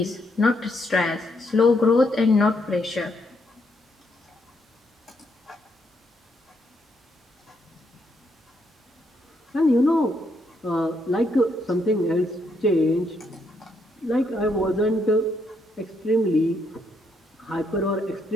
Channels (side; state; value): both; normal; correlation 0.75